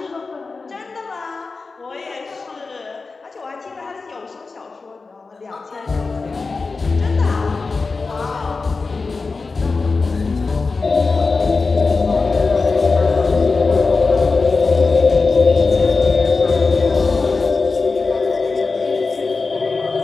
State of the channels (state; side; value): quieter; right; 4.1 dB